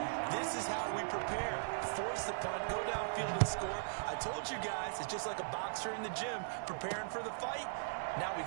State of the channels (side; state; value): left; silent; digital silence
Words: this is how we prepare. Force the punt, go downfield and score. I told you guys, it's just like a boxer in the gym preparing for the fight. Now we